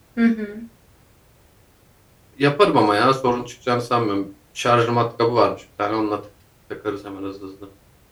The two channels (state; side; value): identical; both; correlation 1.00